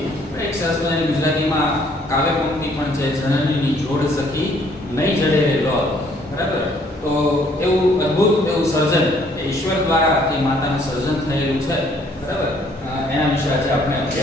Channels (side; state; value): both; normal; correlation 0.63